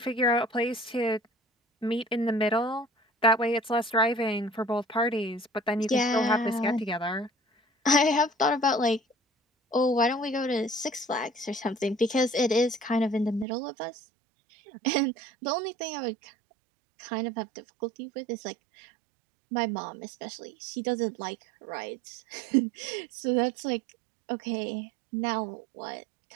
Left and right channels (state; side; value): drops out; left; at 13.5 s